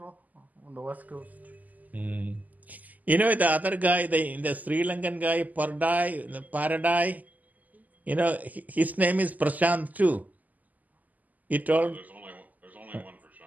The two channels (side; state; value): left; late; 0.079 ms